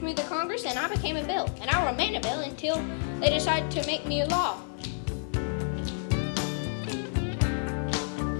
me to Congress, and I became a bill. And I remained a bill until they decided to make me a law.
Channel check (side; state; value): right; silent; digital silence